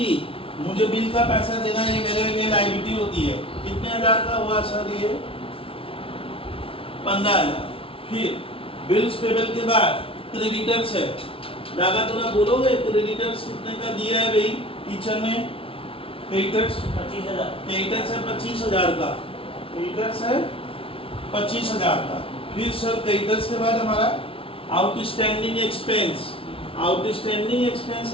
मुझे बिल का पैसा देना है, ये मेरे लिए लायबिलिटी होती है। कितने हजार का हुआ सर ये? 15,000। फिर बिल्स पेबल के बाद क्रेडिटर्स है। दादा थोड़ा बोलोगे क्रेडिटर्स कितने का दिया है भाई टीचर ने? क्रेडिटर्स 25,000। क्रेडिटर्स है 25,000 का, क्रेडिटर्स है 25,000 का। फिर सर क्रेडिटर्स के बाद हमारा आउटस्टैंडिंग एक्सपेंस। आउटस्टैंडिंग एक्सपेंस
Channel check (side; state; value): right; late; 0.26 ms